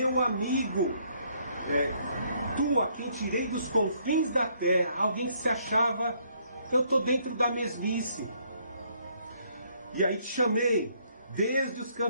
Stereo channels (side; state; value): both; inverted; correlation -0.68